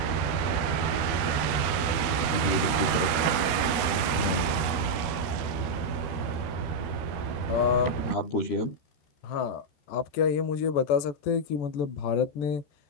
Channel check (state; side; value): late; right; 13 ms